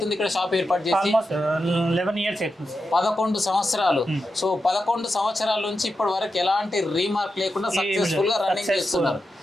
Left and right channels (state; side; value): normal; both; correlation 0.89